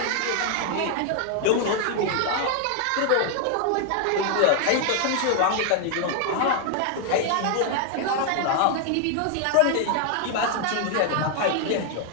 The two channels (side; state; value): both; different; correlation 0.00